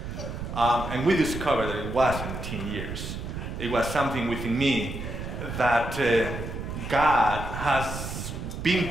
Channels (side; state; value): right; noise; rumble, 7 dB below the sound